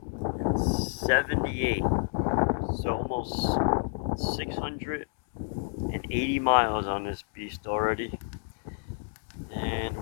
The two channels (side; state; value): right; silent; digital silence